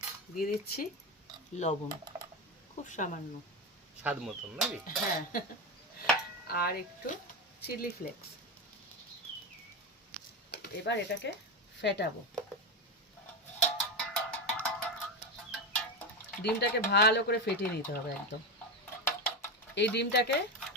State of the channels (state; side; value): normal; both; correlation 0.14